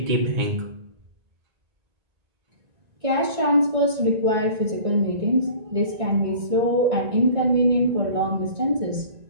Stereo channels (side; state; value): left; late; 1.9 ms